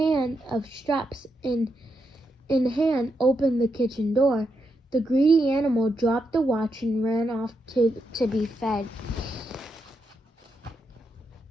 of straps in hand opened the kitchen door, the greedy animal dropped the watch and ran off to be fed.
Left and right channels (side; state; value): both; normal; correlation 0.83